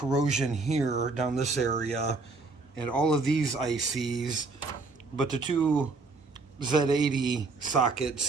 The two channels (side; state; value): left; quieter; 3.8 dB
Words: here down this area and all of these ICs, but the two Z80 sockets